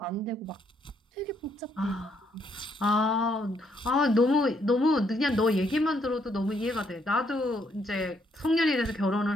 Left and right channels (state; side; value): normal; both; correlation 0.72